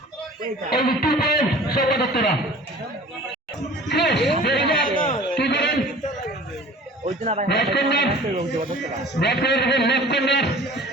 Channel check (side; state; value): both; normal; correlation 0.44